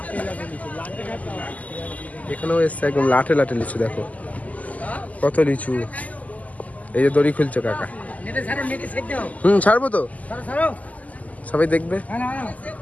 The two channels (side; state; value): right; late; 0.075 ms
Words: এখানেও এসছে একদম লাটে লিচু, দেখো কত লিচু। এই যে দড়ি খুলছে কাকা। ছাড়বো তো, সবাই দেখবে।